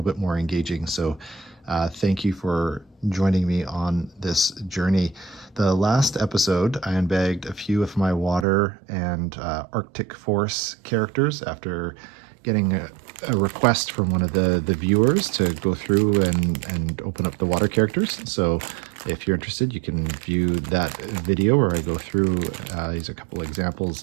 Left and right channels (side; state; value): left; drops out; at 8.5 s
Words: bit more engaging. So thank you for joining me on this journey. The last episode, I unbagged a few of my water and Arctic Force characters after getting a request from one of the viewers to go through and open up the water characters. So if you're interested, you can view that video where I go through. These are a couple examples